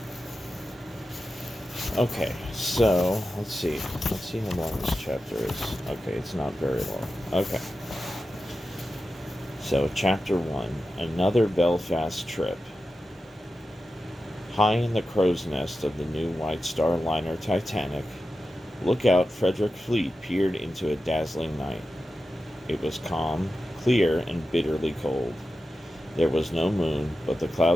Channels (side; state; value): both; normal; correlation 0.92